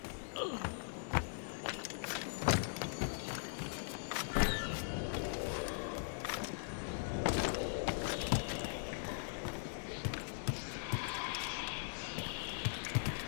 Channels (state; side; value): silent; right; 51 dB below the other